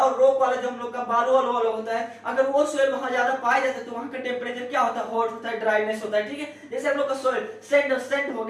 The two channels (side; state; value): both; identical; correlation 1.00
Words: रॉक वाला जो हम लोग का बालू वाला होता है, अगर वो सोइल वहां ज्यादा पाया जाता है तो वहां का टेम्परेचर क्या होता है हॉट होता है, ड्राइनेस होता है, ठीक है। जैसे हम लोग का सोइल सैंड हो